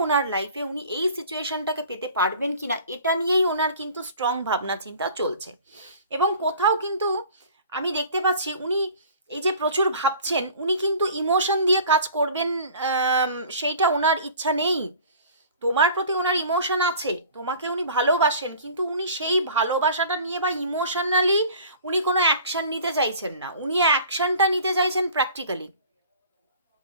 ওনার লাইফে উনি এই সিচুয়েশনটাকে পেতে পারবেন কিনা, এটা নিয়েই ওনার কিন্তু স্ট্রং ভাবনা চিন্তা চলছে। এবং কোথাও কিন্তু আমি দেখতে পাচ্ছি উনি এই যে প্রচুর ভাবছেন, উনি কিন্তু ইমোশন দিয়ে কাজ করবেন, সেইটা ওনার ইচ্ছা নেই। তোমার প্রতি ওনার ইমোশন আছে, তোমাকে উনি ভালোবাসেন, কিন্তু উনি সেই ভালোবাসাটা নিয়ে বা ইমোশনালি উনি কোনো অ্যাকশন নিতে চাইছেন না। উনি অ্যাকশনটা নিতে চাইছেন প্র্যাকটিক্যালি।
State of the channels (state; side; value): inverted; both; correlation -0.46